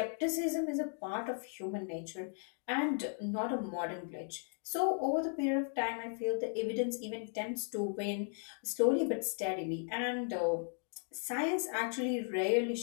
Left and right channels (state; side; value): silent; right; 54 dB below the other